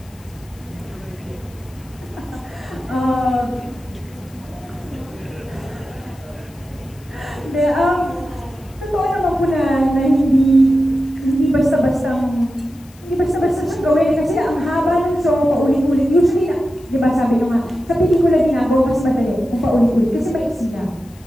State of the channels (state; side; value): noise; left; hiss, 26 dB below the sound